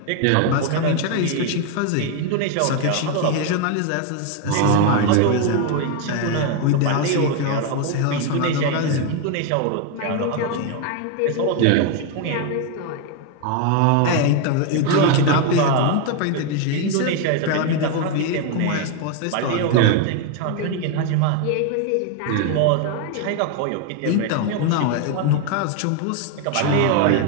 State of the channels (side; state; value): both; different; correlation 0.01